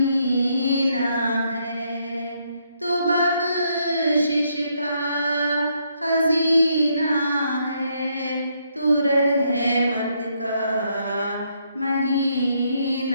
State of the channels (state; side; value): inverted; both; correlation -0.74